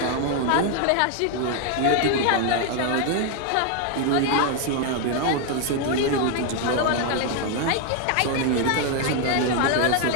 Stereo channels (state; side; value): different; both; correlation 0.01